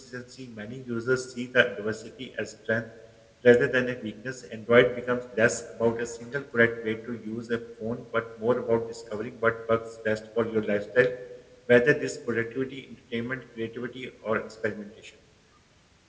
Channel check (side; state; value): both; identical; correlation 1.00